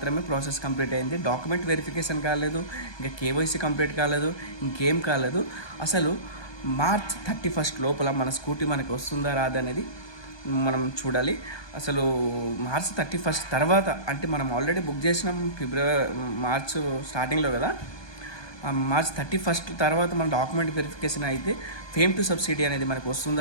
ప్రాసెస్ కంప్లీట్ అయింది. డాక్యుమెంట్ వెరిఫికేషన్ కాలేదు, ఇంకా కేవైసీ కంప్లీట్ కాలేదు, ఇంకేం కాలేదు. అసలు మార్చ్ 31 లోపల మన స్కూటీ మనకి వస్తుందా రాదా అనేది మనం చూడాలి. అసలు మార్చ్ 31 తర్వాత అంటే మనం ఆల్రెడీ బుక్ చేసినాం మార్చ్ స్టార్టింగ్లో కదా. మార్చ్ 31 తర్వాత మన డాక్యుమెంట్ వెరిఫికేషన్ అయితే ఫేమ్ టు సబ్సిడీ అనేది మనకు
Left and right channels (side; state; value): right; late; 1.2 ms